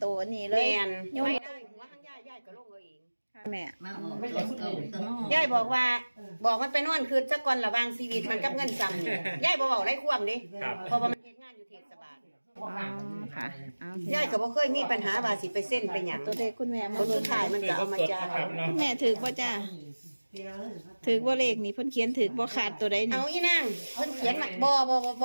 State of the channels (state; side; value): inverted; both; correlation -1.00